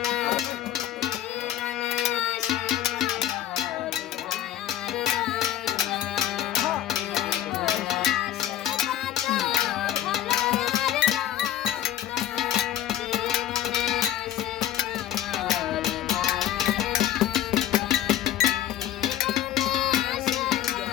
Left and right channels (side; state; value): right; quieter; 12.0 dB